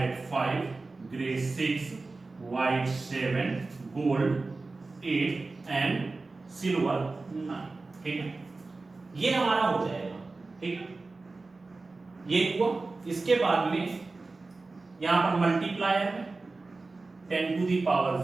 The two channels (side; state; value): left; quieter; 3.6 dB